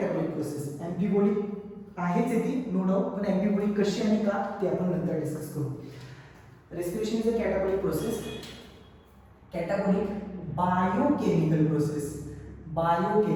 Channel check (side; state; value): both; identical; correlation 1.00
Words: process. Amphibolic आहेच आहे ती, नो डाऊट. पण अँफिबोलिक कशी आणि का ते आपण नंतर डिस्कस करू. Respiration is a catabolic process. Catabolic biochemical process.